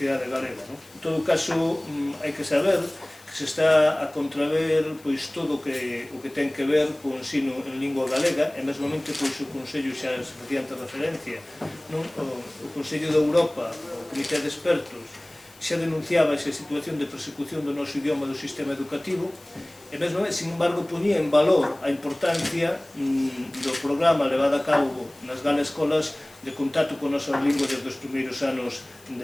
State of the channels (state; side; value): noise; left; hiss, 25 dB below the sound